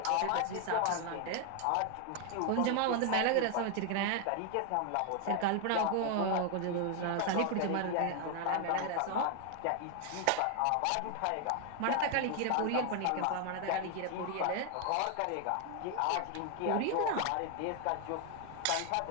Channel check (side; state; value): both; different; correlation 0.01